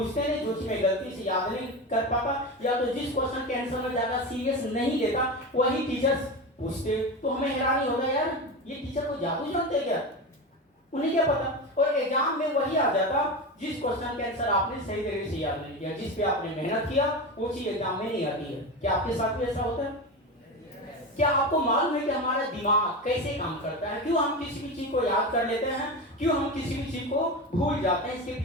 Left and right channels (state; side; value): normal; both; correlation 0.22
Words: नहीं, जो चीज मैं गलती से याद नहीं कर पाता, या तो जिस क्वेश्चन के आंसर में ज्यादा सीरियस नहीं लेता वही टीचर्स पूछते। तो हमें हैरानी होगा, यार ये टीचर को जादू जानते क्या, उन्हें क्या पता। और एग्जाम में वही आ जाता जिस क्वेश्चन के आंसर आपने सही तरीके से याद नहीं किया, जिस पे आपने मेहनत किया, वो चीज एग्जाम में नहीं आती है। क्या आपके साथ भी ऐसा होता है? क्या आपको मालूम है कि हमारा दिमाग कैसे काम करता है? क्यों हम किसी भी चीज को याद कर लेते हैं, क्यों हम किसी भी चीज को भूल जाते हैं? इसके